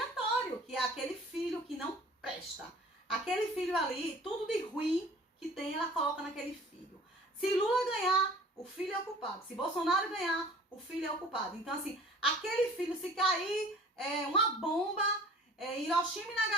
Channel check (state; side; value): normal; both; correlation 0.48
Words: que é aquele filho que não presta. Aquele filho ali, tudo de ruim que tem, ela coloca naquele filho. Se Lula ganhar, o filho é o culpado. Se Bolsonaro ganhar, o filho é o culpado. Então, assim, aquele filho, se cair uma bomba, Hiroshima e